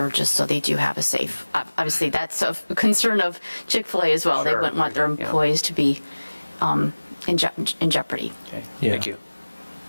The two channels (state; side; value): inverted; both; correlation -1.00